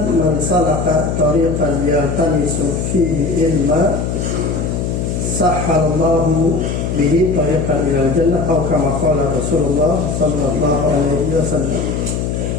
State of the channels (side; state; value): left; noise; hum, 2 dB below the sound